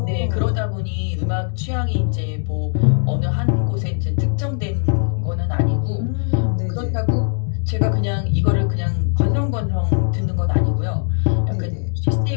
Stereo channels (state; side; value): silent; right; 66 dB below the other